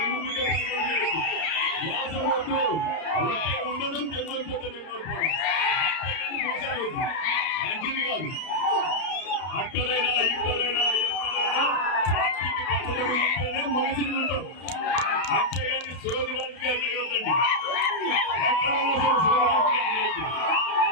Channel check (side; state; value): right; late; 32 ms